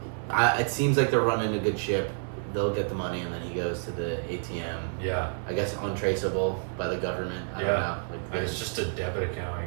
it seems like they're running a good ship. They'll get the money, and then he goes to the ATM. Yeah. I guess untraceable by the government. I don't know. Like, it's just a debit account,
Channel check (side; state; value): left; silent; digital silence